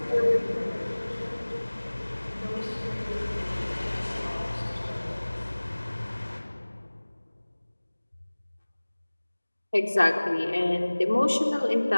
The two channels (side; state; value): both; inverted; correlation -1.00